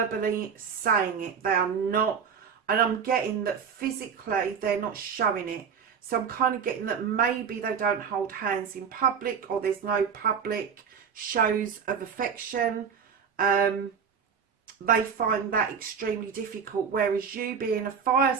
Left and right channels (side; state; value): left; quieter; 6.7 dB